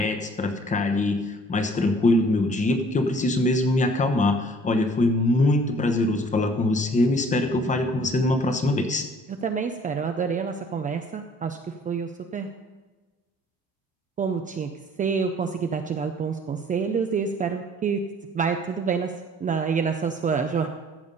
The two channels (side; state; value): both; normal; correlation 0.55